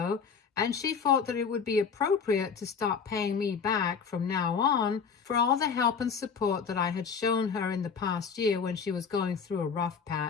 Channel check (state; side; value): quieter; right; 6.1 dB